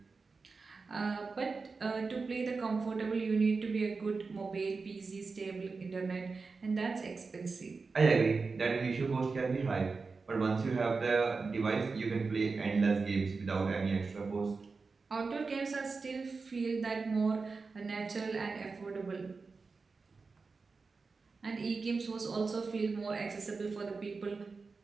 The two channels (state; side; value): quieter; left; 4.4 dB